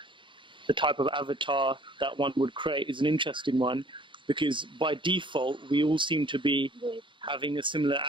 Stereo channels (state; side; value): late; left; 0.24 ms